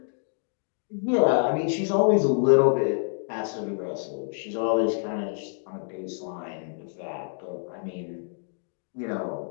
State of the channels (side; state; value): right; silent; digital silence